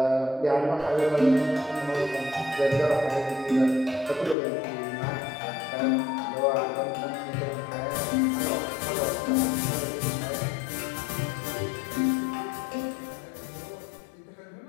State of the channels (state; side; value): drops out; right; at 4.4 s